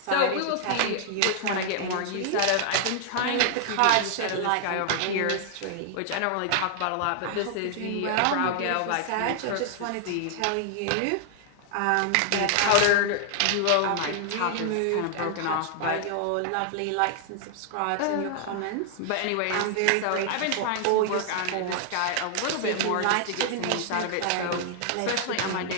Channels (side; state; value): both; different; correlation -0.01